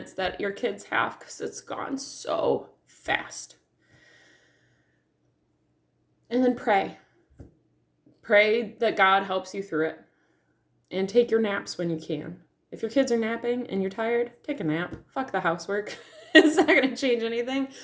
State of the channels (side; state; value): both; identical; correlation 1.00